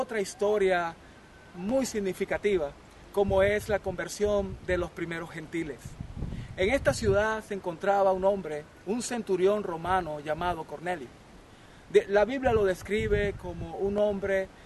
historia muy significativa, como es la conversión de los primeros gentiles. En esta ciudad se encontraba un hombre, un centurión romano llamado Cornelio. La Biblia lo describe como un hombre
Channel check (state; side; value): identical; both; correlation 1.00